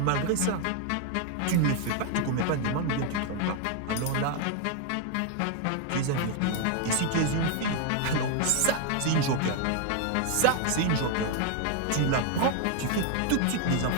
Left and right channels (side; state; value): both; different; correlation 0.00